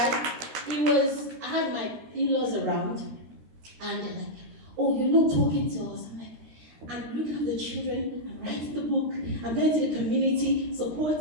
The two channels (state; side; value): late; left; 13 ms